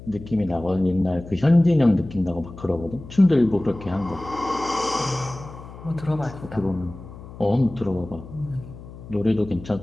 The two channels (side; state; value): left; noise; hum, 15 dB below the sound